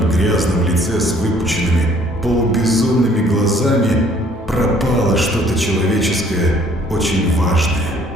грязном лице с выпученными, полубезумными глазами пропало что-то человеческое, очень важное.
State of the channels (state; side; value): normal; both; correlation 0.59